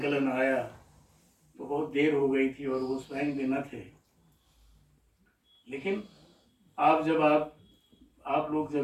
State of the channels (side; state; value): both; identical; correlation 1.00